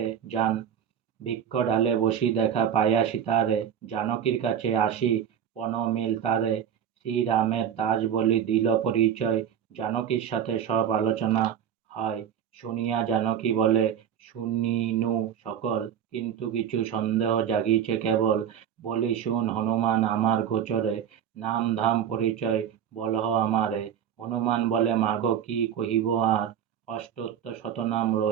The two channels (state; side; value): quieter; left; 9.0 dB